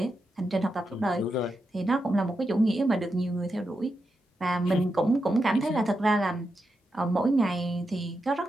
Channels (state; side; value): normal; both; correlation 0.86